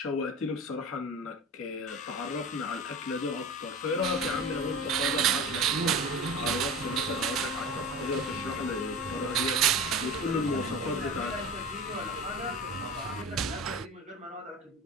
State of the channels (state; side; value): normal; both; correlation 0.33